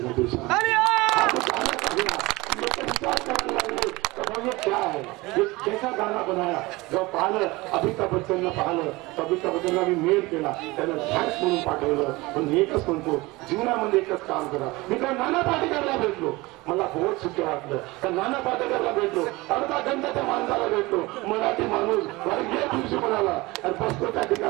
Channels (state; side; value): quieter; left; 21.9 dB